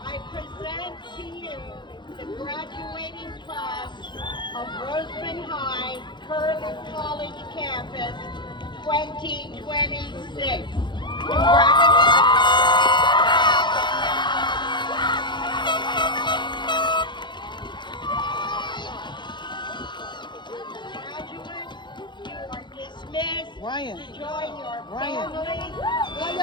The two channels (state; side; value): late; right; 0.22 ms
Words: I present to you the graduating class of Rosamond High Curley College Campus 2026. Graduates, you are dismissed Ryan. to join your Ryan. family. How